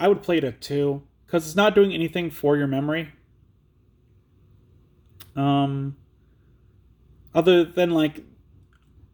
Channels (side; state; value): both; identical; correlation 1.00